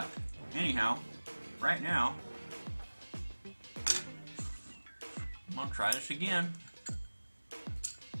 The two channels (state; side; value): inverted; both; correlation -1.00